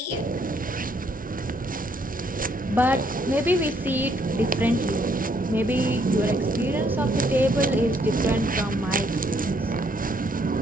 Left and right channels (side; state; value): both; normal; correlation 0.69